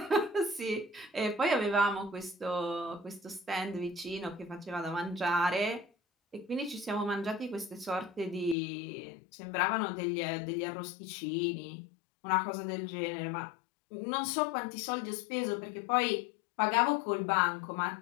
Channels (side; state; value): right; drops out; at 8.6 s